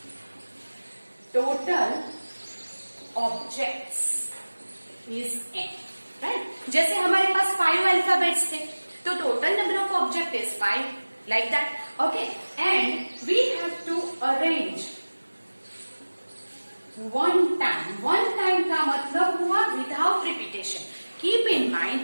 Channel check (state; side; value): inverted; both; correlation -1.00